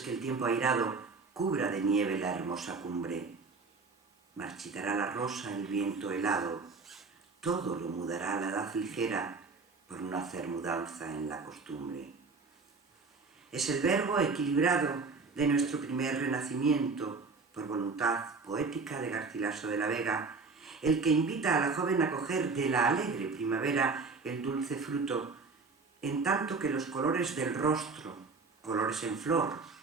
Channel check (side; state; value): left; quieter; 4.3 dB